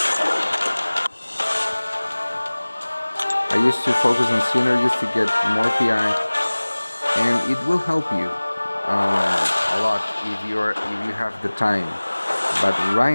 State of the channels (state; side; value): inverted; both; correlation -1.00